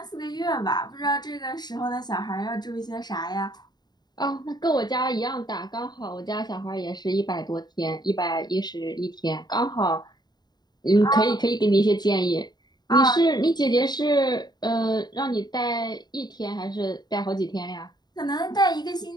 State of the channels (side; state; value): right; late; 0.20 ms